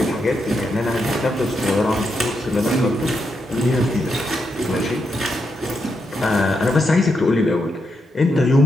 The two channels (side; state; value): both; normal; correlation 0.82